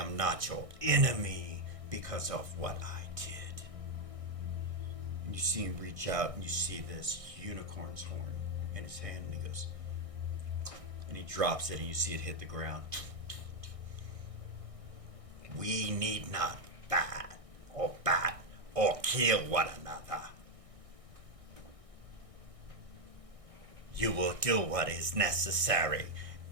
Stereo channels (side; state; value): left; late; 1.6 ms